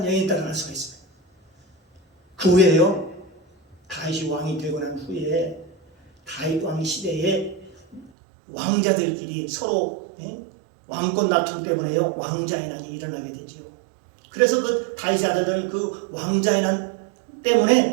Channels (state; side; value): drops out; left; at 8.1 s